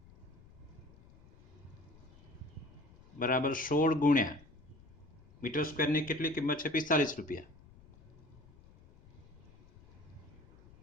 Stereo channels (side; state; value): left; noise; rumble, 24 dB below the sound